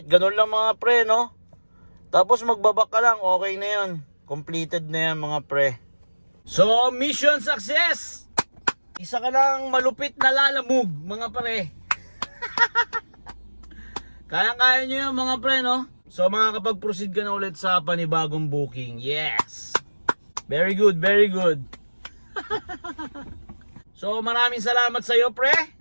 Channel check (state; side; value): inverted; both; correlation -1.00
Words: ganun lang mga pre, no? Tapos magbabak ka lang, okay na yan. Completed na yan mga pre. So, mission success! Isa ka lang malupit na lalamove, mga pre. Kaya-kaya nyo yan mga pre, no? So, makakapag-proceed ka na ulit sa panibagong booking. Yes! Very good, very good. So maraming salamat sa iyo pre.